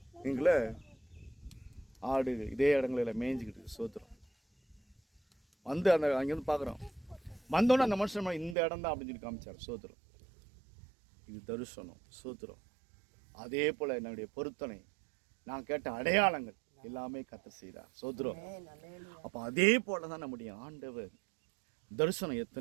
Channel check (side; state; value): left; drops out; at 8.6 s